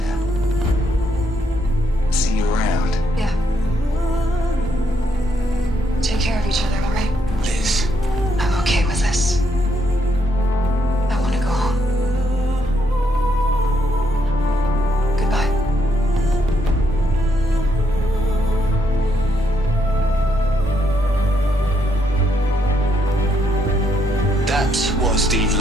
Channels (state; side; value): normal; both; correlation 0.76